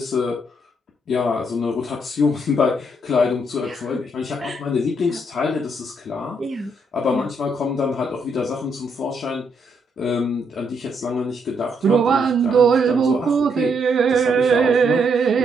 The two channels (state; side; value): normal; both; correlation 0.75